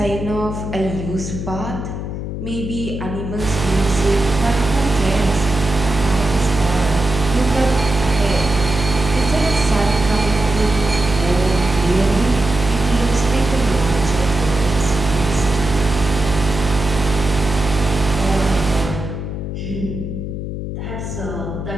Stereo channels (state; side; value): noise; left; hum, 7 dB below the sound